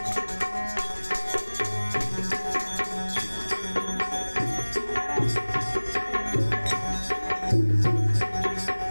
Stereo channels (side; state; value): both; inverted; correlation -1.00